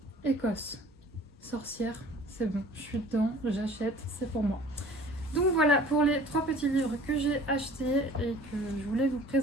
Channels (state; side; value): normal; both; correlation 0.48